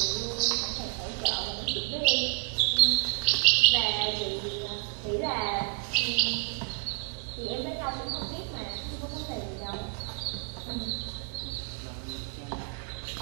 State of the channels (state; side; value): quieter; left; 37.2 dB